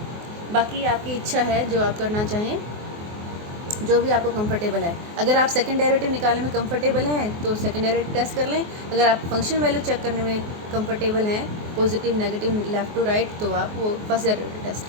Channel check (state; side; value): late; left; 24 ms